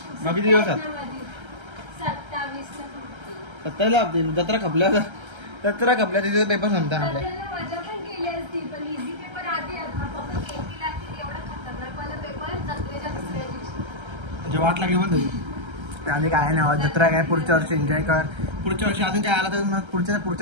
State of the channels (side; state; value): left; late; 1.3 ms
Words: मग किती दिवसात? 27 ला आपली जत्रा खपल्या. तिथे पेपर संपता आपल्या. म्हणजे वाट लागली पण त्याने काय नाही. जत्रा काय पुढच्या वर्षी एन्जॉय कर. पुढच्या वर्षी अजून काय आला तर